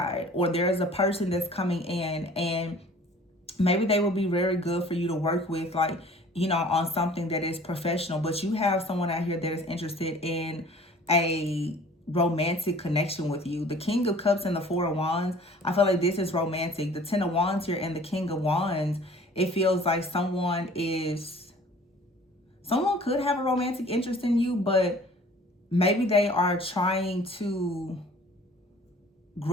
or there's a person that's coming in, and maybe they will be very good for you to work with, like, you know, on something that is professional. But you have someone out here that is interested in a romantic connection with you. The King of Cups and the Four of Wands, I feel like this is romantic. The Ten of Wands here and the King of Wands, it feels like someone could have a romantic interest in you, but maybe they are trying to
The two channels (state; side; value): normal; both; correlation 0.49